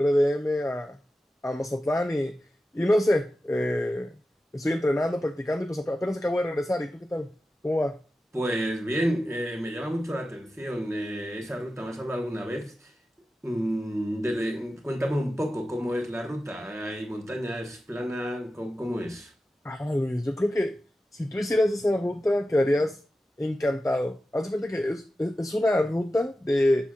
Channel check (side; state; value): both; normal; correlation 0.93